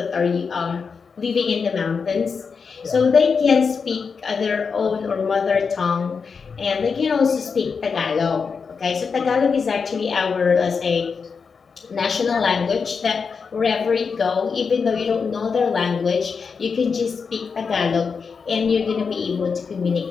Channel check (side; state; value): right; quieter; 5.5 dB